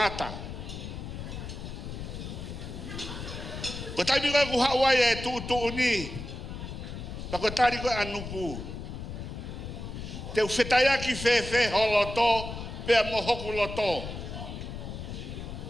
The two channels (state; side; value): noise; left; rumble, 8 dB below the sound